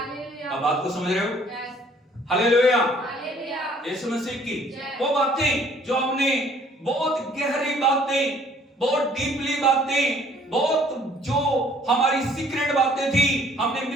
आप बात को समझ रहे हो? हालेलुया, यीशु मसीह की। वो बातें जो हमने बहुत गहरी बातें, बहुत डीपली बातें, बहुत जो हमारी सीक्रेट बातें थी, हमने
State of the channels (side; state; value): both; normal; correlation 0.58